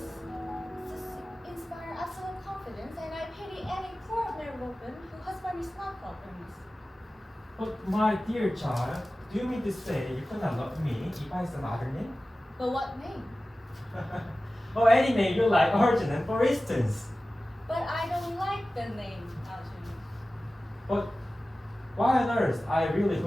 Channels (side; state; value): both; normal; correlation 0.96